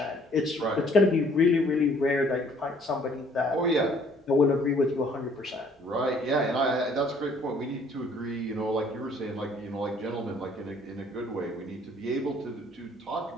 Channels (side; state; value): both; normal; correlation 0.59